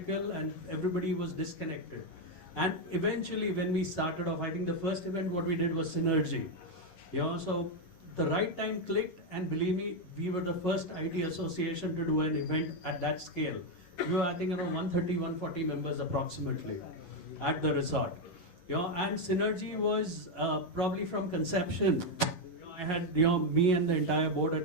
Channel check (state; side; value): late; right; 11 ms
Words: and everybody was disconnected. And eventually when we started off, I think the first event what we did was Synergy. So the right time clicked, and believe me, we were the first IT association to do an event at that scale. We were, I think, around 130, 140 members approximately at the resort. And Synergy was probably from conception. I had, me and the entire board